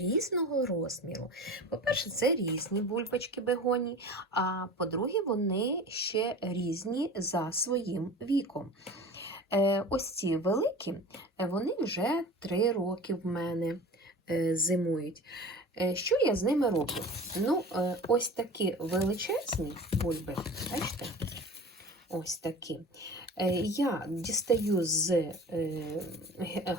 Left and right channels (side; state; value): both; normal; correlation 0.37